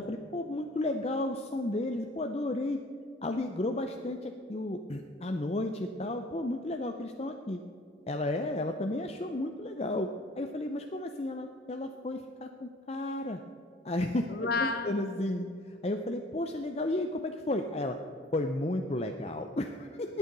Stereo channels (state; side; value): normal; both; correlation 0.52